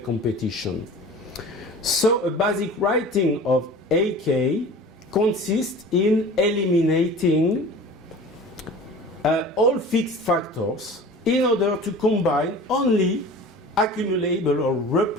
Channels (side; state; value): both; normal; correlation 0.40